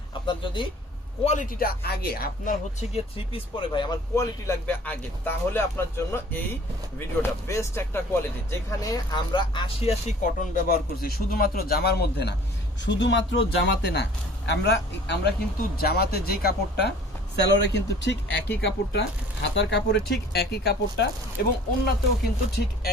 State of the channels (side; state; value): both; normal; correlation 0.50